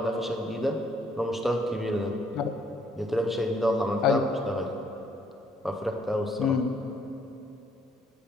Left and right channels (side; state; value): both; normal; correlation 0.66